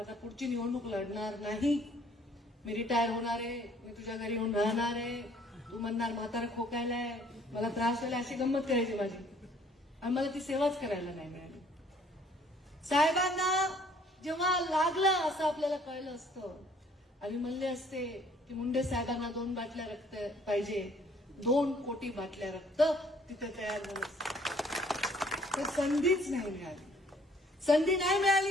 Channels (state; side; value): normal; both; correlation 0.60